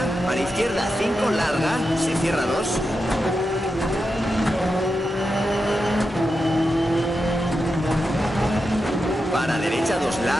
para izquierda 5 larga, se cierra 2. Para derecha 2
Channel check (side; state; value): both; normal; correlation 0.88